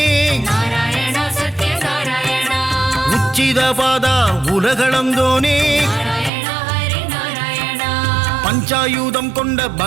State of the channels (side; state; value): left; drops out; at 6.3 s